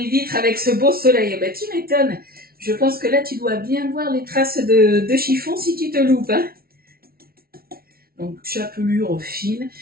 vitres avec ce beau soleil. Ben, tu m'étonnes. Je pense que là, tu dois bien voir les traces de chiffon si tu te loupes. Hein. Donc, chapelure fine.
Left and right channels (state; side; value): late; left; 0.44 ms